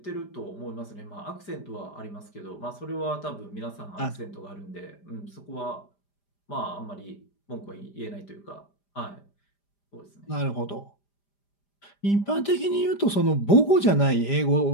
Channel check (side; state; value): right; late; 5.0 ms